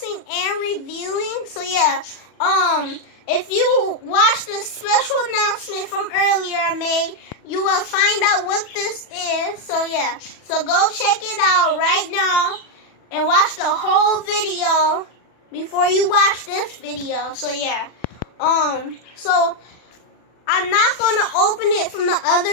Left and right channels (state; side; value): late; right; 40 ms